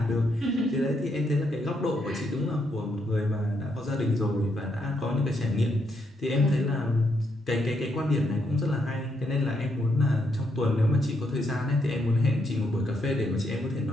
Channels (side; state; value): both; normal; correlation 0.77